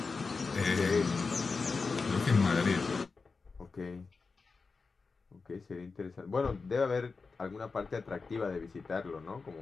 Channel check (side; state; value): right; quieter; 4.5 dB